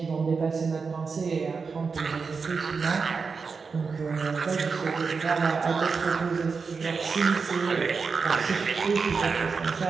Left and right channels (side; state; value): left; quieter; 5.0 dB